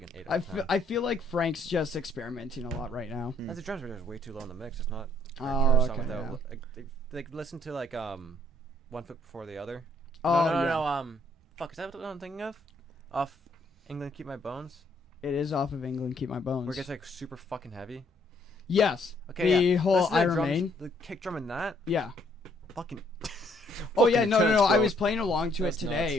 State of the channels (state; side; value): normal; both; correlation 0.66